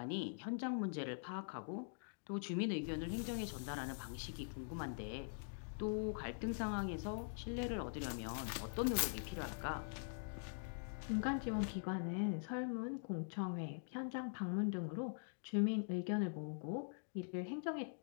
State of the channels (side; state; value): right; silent; digital silence